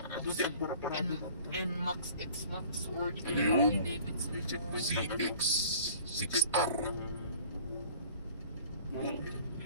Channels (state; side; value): inverted; both; correlation -0.50